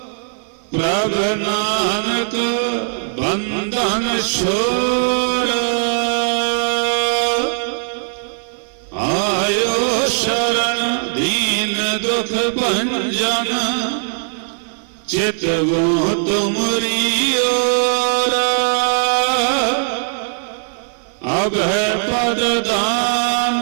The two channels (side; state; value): left; silent; 58 dB below the other